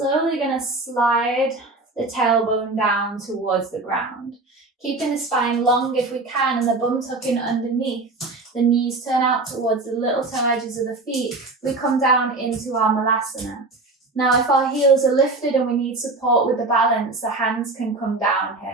going to slide the tailbone down towards the ground. Keeping the spine long if we can and the bum tucking underneath. The knees turn out towards the little toe edges of the feet. We come down into our Malasana. Now, if our heels are lifted and we need support with the balance, the hands can come down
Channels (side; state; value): left; quieter; 3.4 dB